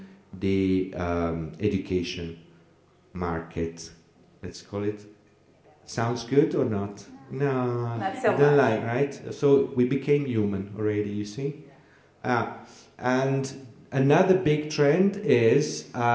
the education market. Let's call it. Sounds good or not? No, not so don't much. like, right? So we became human already, you see? And another big trend is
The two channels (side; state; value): both; identical; correlation 1.00